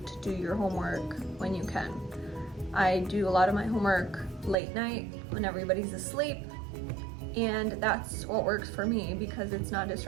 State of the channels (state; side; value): drops out; left; at 4.5 s